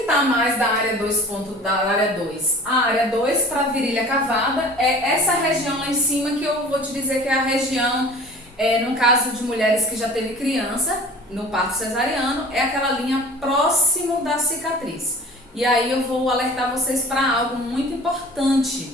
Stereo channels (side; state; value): both; normal; correlation 0.43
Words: está mais da área 2? Da área 2? A área 2 para virilha cavada é essa região lá em cima, que eu vou te dizer que é a região, no caso de mulheres que já teve criança, no parto cesariano, é aquela linha próximo da cicatriz. E aí eu vou alertar vocês para algo muito